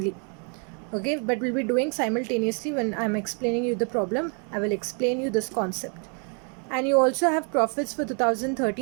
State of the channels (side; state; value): left; quieter; 39.1 dB